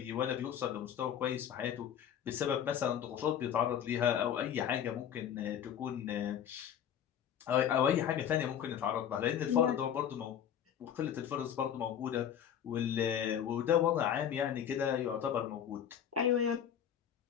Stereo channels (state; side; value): quieter; right; 9.3 dB